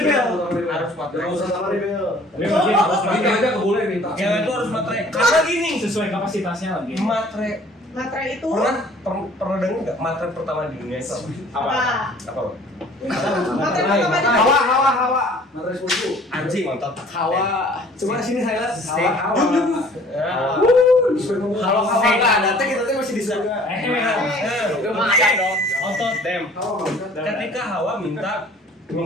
harus matre. Terutama Rebel. Ini mungkin harus Cewek itu harus matre. Karena gini, sesuai kapasitasnya lagi. matre Matre itu pernah dengar nggak matre pertama di dunia itu apa? apa? Matre pertama di Hawa. Matre 10. Anjing nonton. Hawa. Coba sini highlight. Hawa. Kalau Hawa nggak ada, kita masih di surga. Lumayan dong. otot dem. Ketika Hawa minta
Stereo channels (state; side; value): normal; both; correlation 0.52